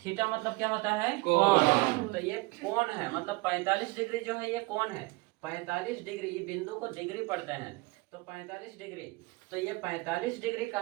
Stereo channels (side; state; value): left; quieter; 23.7 dB